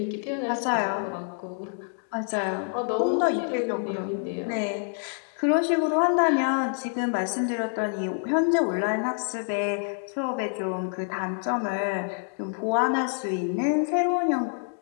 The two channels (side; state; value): right; silent; 60 dB below the other